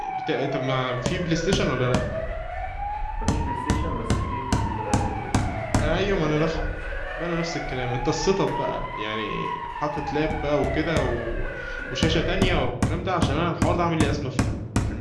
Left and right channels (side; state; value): both; identical; correlation 1.00